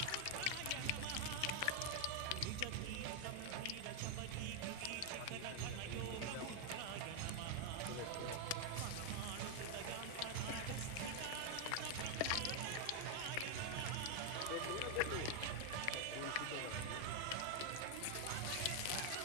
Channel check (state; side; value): different; both; correlation 0.00